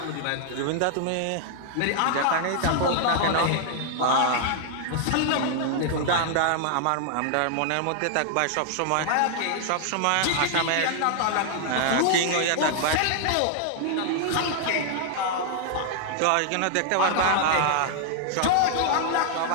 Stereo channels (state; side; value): different; both; correlation 0.00